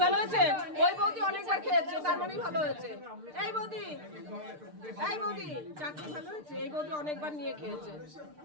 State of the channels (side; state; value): left; late; 6.6 ms